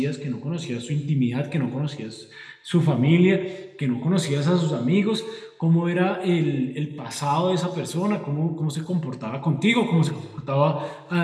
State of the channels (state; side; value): identical; both; correlation 1.00